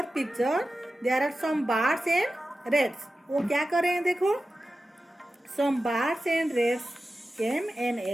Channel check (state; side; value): normal; both; correlation 0.93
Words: picture, there are some birds and rats. वो क्या कर रहे हैं, देखो some birds and rats came and